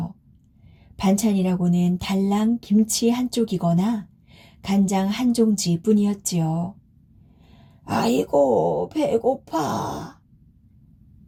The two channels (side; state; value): both; identical; correlation 1.00